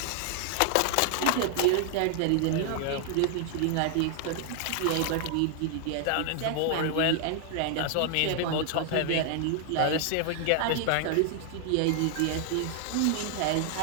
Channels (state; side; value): different; both; correlation 0.00